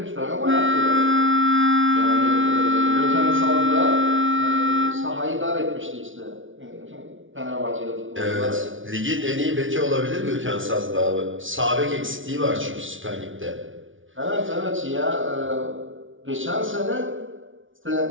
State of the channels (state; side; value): late; left; 0.57 ms